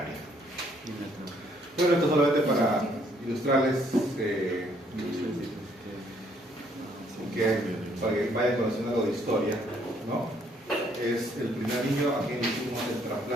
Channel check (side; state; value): both; normal; correlation 0.67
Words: Bueno, esto solamente para ilustrarles para que vayan conociendo algo de historia, ¿no? Es el primer niño a quien hicimos el